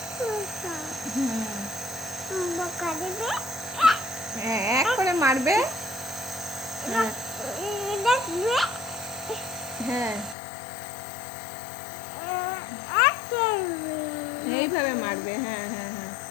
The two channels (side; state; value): right; drops out; at 10.4 s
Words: হ্যাঁ, এক করে মারবে। হ্যাঁ, এইভাবে মারবে। হ্যাঁ হ্যাঁ হ্যাঁ,